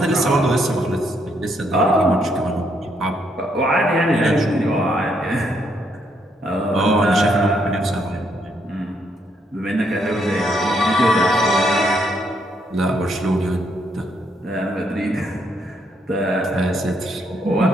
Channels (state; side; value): normal; both; correlation 0.74